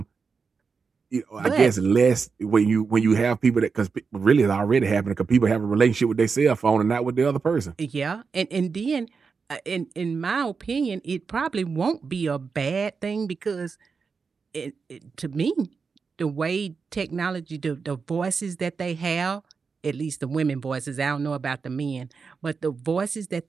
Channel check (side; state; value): left; quieter; 5.2 dB